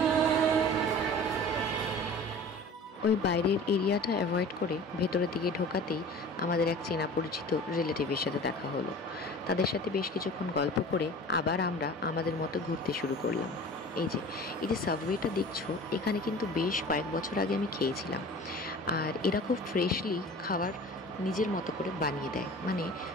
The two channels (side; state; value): both; normal; correlation 0.41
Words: ওই বাইরের এরিয়াটা অ্যাভয়েড করে ভেতরের দিকে ঢোকাতেই আমাদের এক চেনা পরিচিত রিলেটিভের সাথে দেখা হলো। তাদের সাথে বেশ কিছুক্ষণ গল্প করে আবার আমরা আমাদের মতো ঘুরতে শুরু করলাম। এই যে সাবওয়েটা দেখছো, এখানে কিন্তু বেশ কয়েক বছর আগে আমি খেয়েছিলাম। আর এরা খুব ফ্রেশলি খাবার নিজের মতো করে বানিয়ে দেয়, মানে